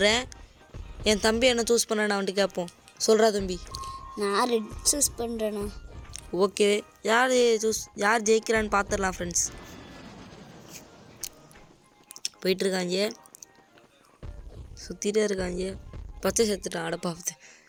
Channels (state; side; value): identical; both; correlation 1.00